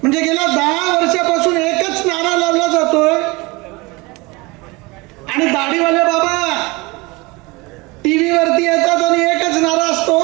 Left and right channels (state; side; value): quieter; left; 24.6 dB